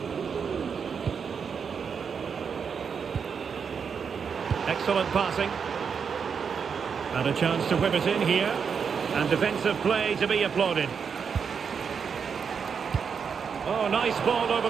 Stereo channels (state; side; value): quieter; left; 6.4 dB